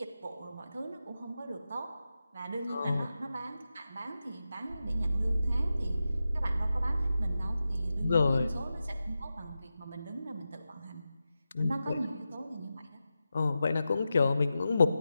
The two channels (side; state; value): both; inverted; correlation -0.91